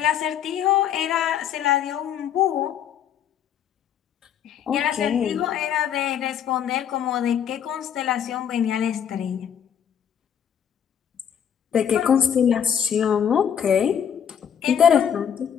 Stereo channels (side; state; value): right; quieter; 8.6 dB